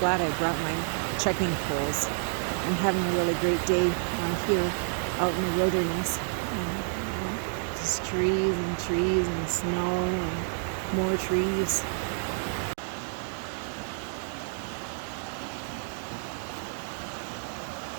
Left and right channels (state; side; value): silent; left; 58 dB below the other